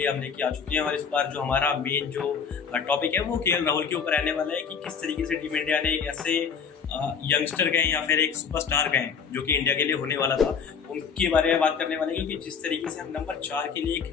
हम लेके आ चुके हैं। और इस बार जो हमारा मेन जो टॉपिक है वो केएल राहुल के ऊपर रहने वाला है कि किस तरीके से टीम इंडिया ने एक ऐसे यंगस्टर गए या फिर एक सुपरस्टार गए जो कि इंडिया के लिए होने वाला था, उनके बारे में बात करने वाले हैं। क्योंकि जिस तरीके से हम नंबर 4 के लिए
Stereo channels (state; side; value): quieter; right; 6.4 dB